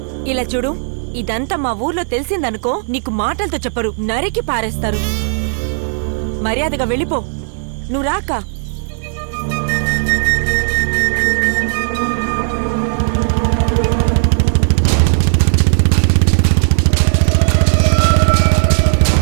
ఇలా చూడు, ఇదంతా మా ఊర్లో తెలిసిందనుకో, నీకు మాటలతో చెప్పరు, నరికి పారేస్తారు. మర్యాదగా వెళ్ళిపో. నువ్వు రాక.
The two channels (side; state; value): left; silent; digital silence